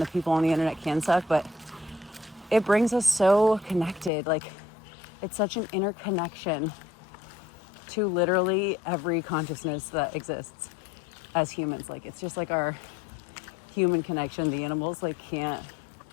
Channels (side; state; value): right; drops out; at 4.1 s